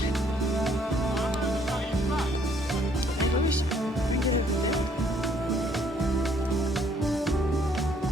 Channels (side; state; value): both; normal; correlation 0.65